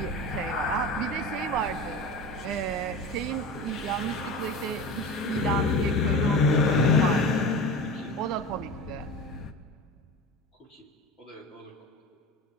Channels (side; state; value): both; normal; correlation 0.31